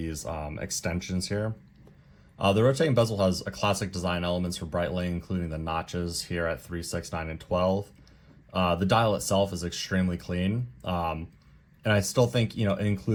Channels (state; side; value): identical; both; correlation 1.00